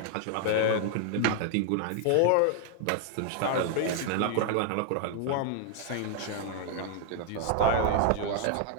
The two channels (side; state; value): both; different; correlation 0.00